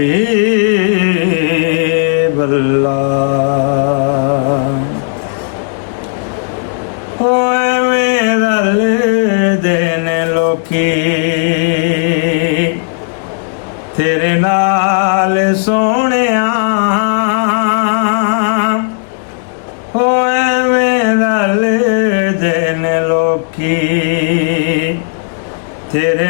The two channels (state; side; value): silent; right; 64 dB below the other